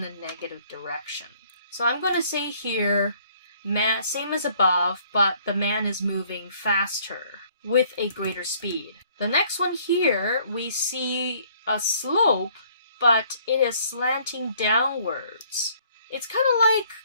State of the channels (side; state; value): both; inverted; correlation -0.61